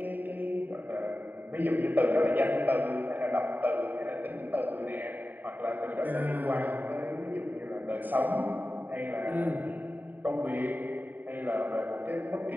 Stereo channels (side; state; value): left; late; 0.089 ms